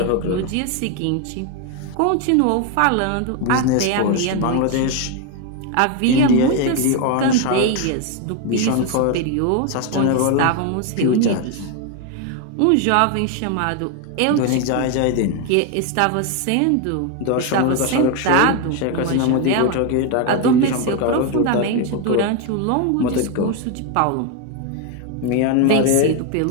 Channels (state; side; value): different; both; correlation 0.01